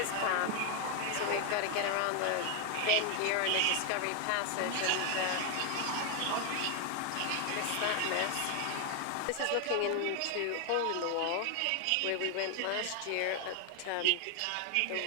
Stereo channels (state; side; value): different; both; correlation 0.01